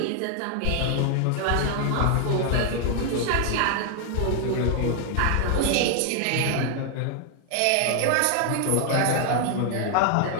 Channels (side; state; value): both; different; correlation 0.00